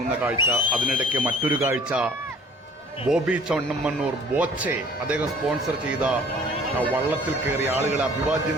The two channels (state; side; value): normal; both; correlation 0.52